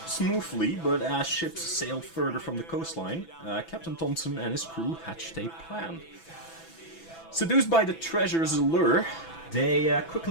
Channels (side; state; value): right; late; 6.0 ms